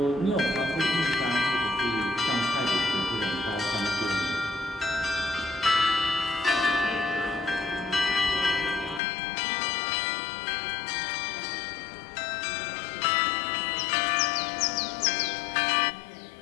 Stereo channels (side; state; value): right; drops out; at 9.0 s